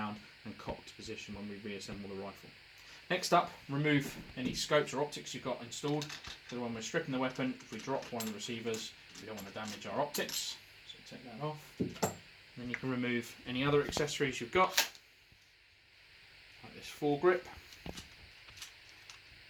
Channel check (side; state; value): both; identical; correlation 1.00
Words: and cocked position when we reassemble the rifle. Next up, remove any scopes or optics you've got installed, because when we're stripping the weapon, if we drop one of the receivers, we don't want to damage our optics, so take that off. And then you can remove any other accessories you've got, like this foregrip.